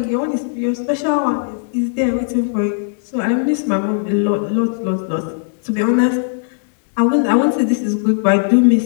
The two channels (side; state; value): right; silent; digital silence